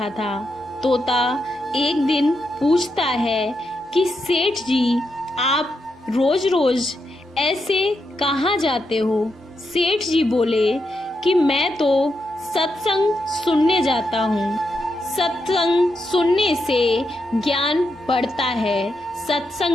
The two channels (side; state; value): both; normal; correlation 0.84